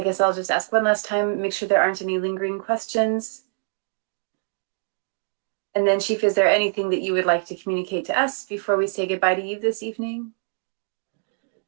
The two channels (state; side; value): silent; left; digital silence